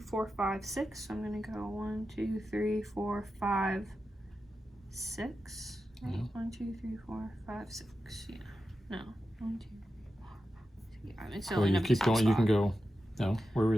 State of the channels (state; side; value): normal; both; correlation 0.91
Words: 4, 5, 6. So I'm gonna go 1, 2, 3, 4, 5, 6. Right? Yeah. 1, 2, 3, 4, 5, 6. Yeah. No. 1, 2. Yeah, I mean, so Well, you keep going. You can go. No, where are